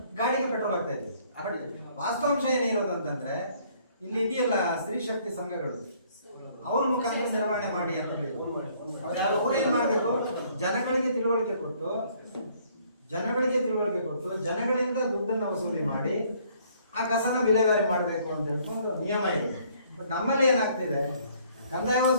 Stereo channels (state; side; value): inverted; both; correlation -0.62